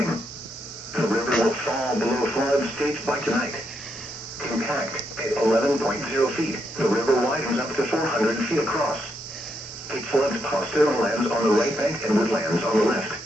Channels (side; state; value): both; normal; correlation 0.79